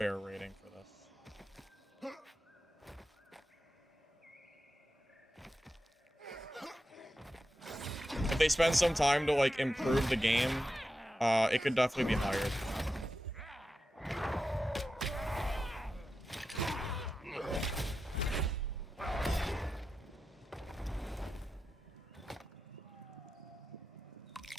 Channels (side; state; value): both; normal; correlation 0.90